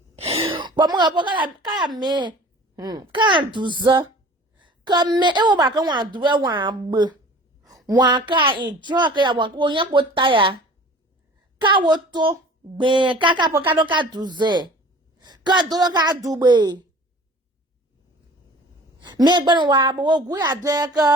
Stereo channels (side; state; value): both; normal; correlation 0.45